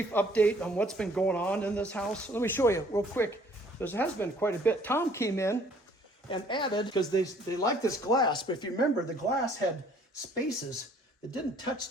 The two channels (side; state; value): both; normal; correlation 0.58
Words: update on what's been going on in this house. Let me show you real quick. There has been quite a bit. Tom came in and added, because they like this glass, but if you remember, the glass had spaces that didn't touch